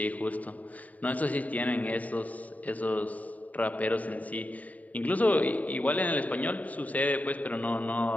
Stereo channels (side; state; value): right; late; 0.071 ms